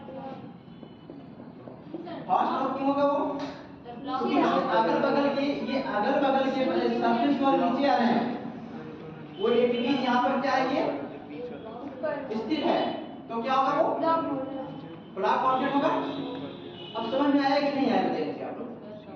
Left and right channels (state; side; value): identical; both; correlation 1.00